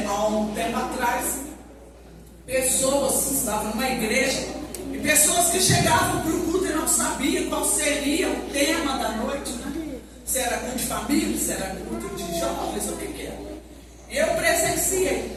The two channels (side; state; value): both; identical; correlation 1.00